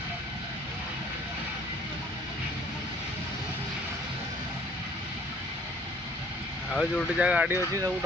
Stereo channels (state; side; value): normal; both; correlation 0.57